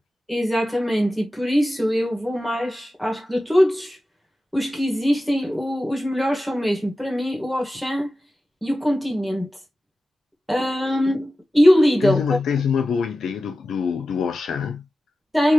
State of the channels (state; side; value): normal; both; correlation 0.94